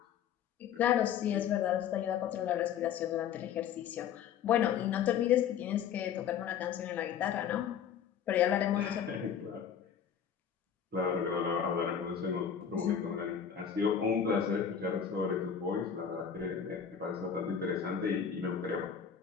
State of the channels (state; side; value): quieter; right; 8.1 dB